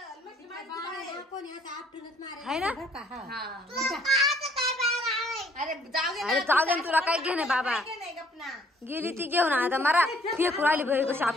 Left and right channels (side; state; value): both; normal; correlation 0.62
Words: आहे ना अरे जाऊ दे तुला काय घेणे बाबा गेली ती घेऊन आता मला फेकू आली भाई कशी